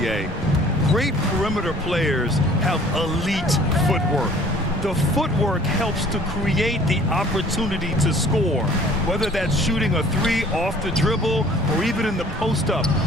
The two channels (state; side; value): normal; both; correlation 0.52